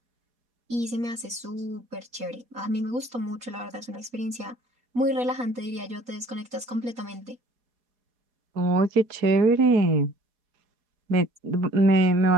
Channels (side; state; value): left; late; 4.1 ms